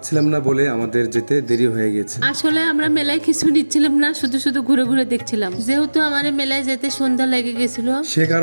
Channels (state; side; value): inverted; both; correlation -1.00